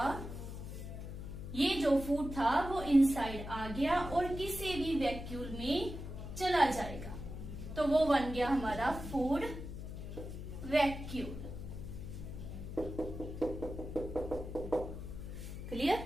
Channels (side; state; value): left; noise; hum, 8 dB below the sound